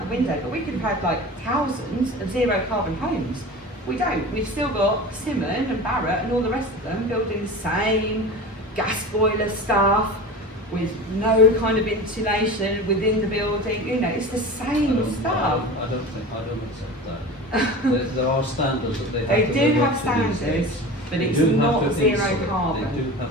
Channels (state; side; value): normal; both; correlation 0.33